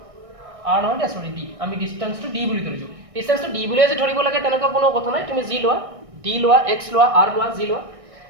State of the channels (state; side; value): late; left; 1.6 ms